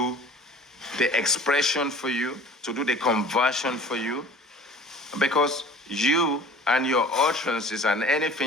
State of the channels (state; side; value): normal; both; correlation 0.45